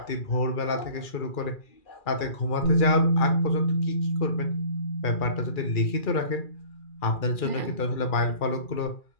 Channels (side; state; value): right; late; 2.4 ms